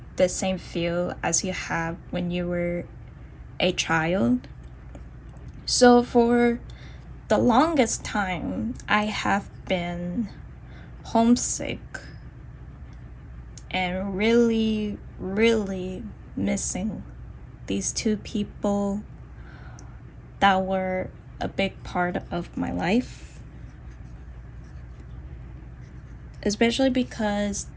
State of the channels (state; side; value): identical; both; correlation 1.00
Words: the same feel as you have when you were a child. So for the longest time, I have been homesick and really, really missing these two people that were a big part of my life. Especially because